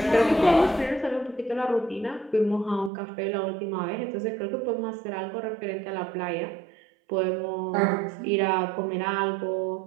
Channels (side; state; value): left; drops out; at 2.9 s